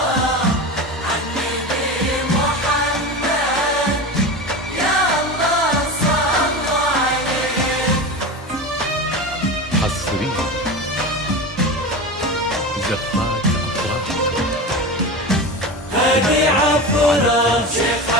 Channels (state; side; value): normal; both; correlation 0.26